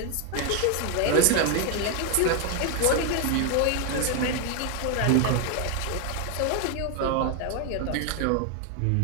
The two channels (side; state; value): both; different; correlation 0.01